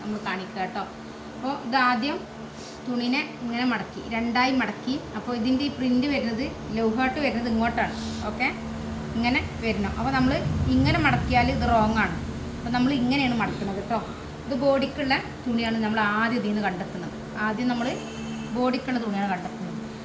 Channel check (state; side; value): identical; both; correlation 1.00